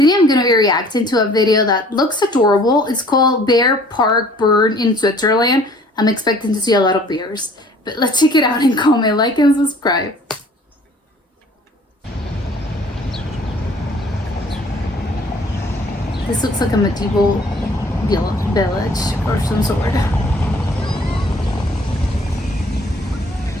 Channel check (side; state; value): both; normal; correlation 0.54